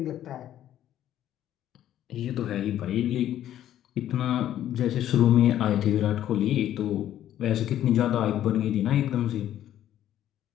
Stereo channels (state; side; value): quieter; right; 11.8 dB